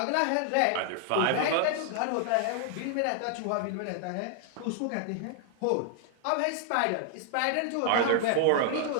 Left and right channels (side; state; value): both; different; correlation 0.00